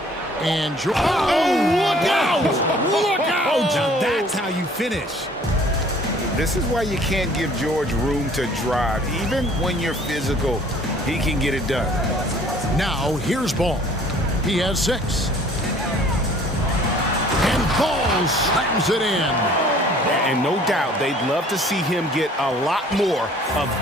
And George. Oh, look out! Look out! Now that's how you finish. This is why you can't give George room to drive. Even when you're physical, he can get it done. Now, here's Ball. He has 6. And Ball slams it in. And no doubt, they'd love to see him get a lot more of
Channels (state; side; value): normal; both; correlation 0.54